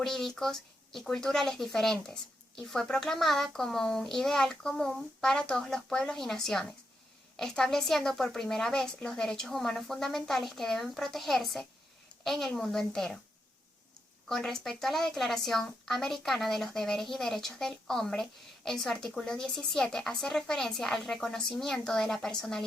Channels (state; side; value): normal; both; correlation 0.83